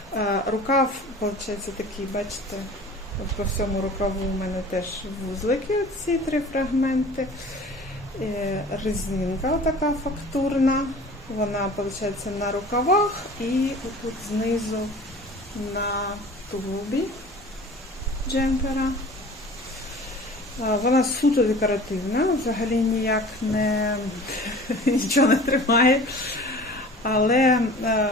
Рукав, виходить, такий, бачите, по всьому рукаву у мене теж вузлики, ці три фрагменти. Резинка така фактурна, вона, виходить, на рукавах і тут знизу на тулубі джемпера. Вона суто декоративна, взагалі ніяк нічого не тримає. Але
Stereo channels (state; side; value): normal; both; correlation 0.43